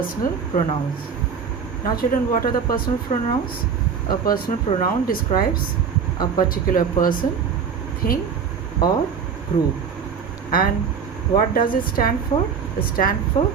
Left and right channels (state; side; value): quieter; left; 6.5 dB